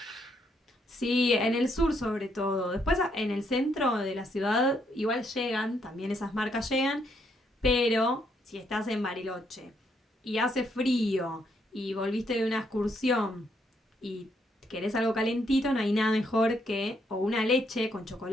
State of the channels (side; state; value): both; normal; correlation 0.74